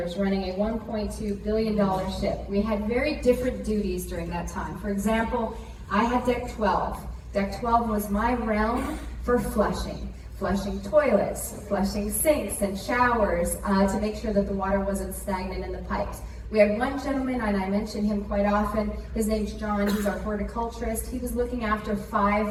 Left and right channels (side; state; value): both; identical; correlation 1.00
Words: running a $1.2 billion ship. We had very different duties during that time. For example, I had deck 12. Deck 12 was my realm for flushing toilets, flushing sinks and showers to make sure that the water wasn't stagnant in the pipes. We had one gentleman, and I mention him quite often. His name's John. He's our horticulturist. He was looking after